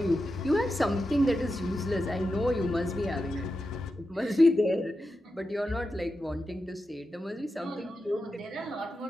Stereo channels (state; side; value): normal; both; correlation 0.90